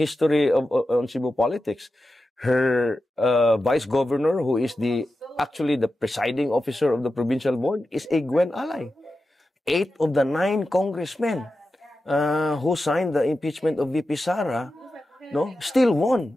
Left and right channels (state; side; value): normal; both; correlation 0.91